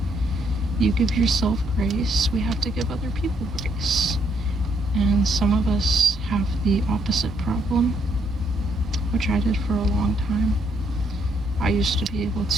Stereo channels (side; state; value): both; normal; correlation 0.72